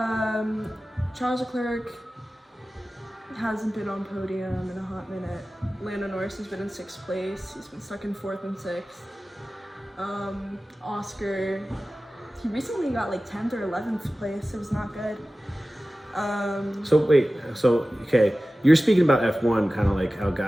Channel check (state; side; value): normal; both; correlation 0.96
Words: Charles Leclerc hasn't been on podium in a hot minute. Lando Norris has been in 6th place. He's been stuck in 4th and 6th. Oscar, he recently got like 10th or 11th place. It was not good. Okay, you're speaking about F1 kind of like how